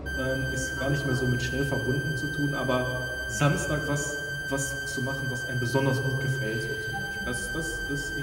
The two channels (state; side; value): identical; both; correlation 1.00